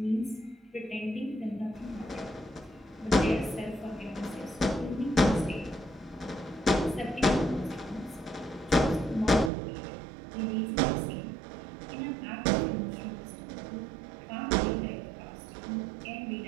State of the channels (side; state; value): left; drops out; at 9.5 s